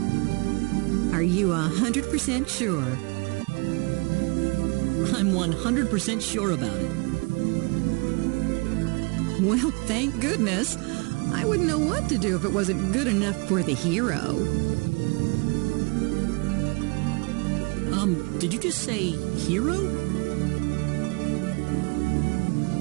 Are you 100% sure? I'm 100% sure about it. Well, thank goodness. I wouldn't know what to do if it wasn't good enough for the hero. Did you just say hero?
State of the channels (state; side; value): quieter; left; 30.7 dB